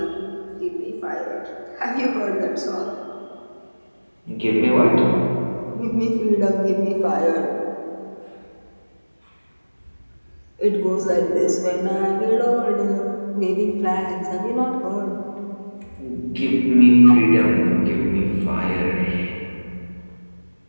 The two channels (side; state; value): both; inverted; correlation -1.00